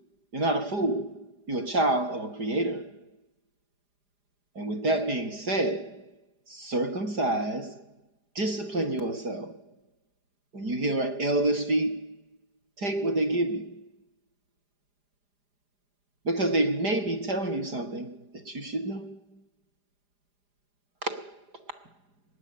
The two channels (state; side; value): late; left; 4.9 ms